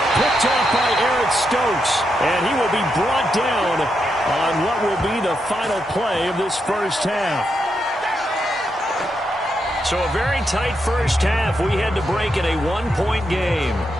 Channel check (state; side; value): normal; both; correlation 0.83